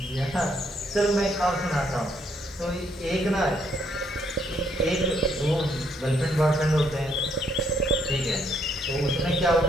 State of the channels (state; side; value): normal; both; correlation 0.71